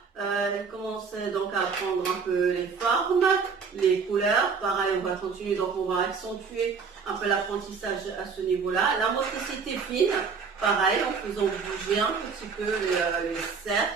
Elle commence donc à apprendre un peu les formes, les couleurs. Pareil, on va continuer, donc on va accentuer un peu l'apprentissage à ce niveau-là. La motricité fine, pareil, en faisant bouger un petit peu les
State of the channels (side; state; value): left; quieter; 5.5 dB